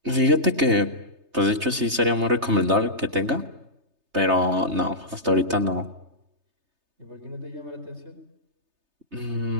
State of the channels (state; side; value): late; left; 3.3 ms